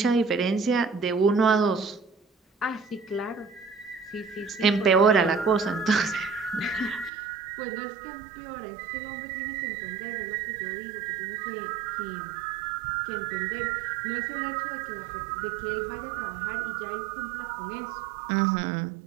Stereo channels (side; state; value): left; drops out; at 7.1 s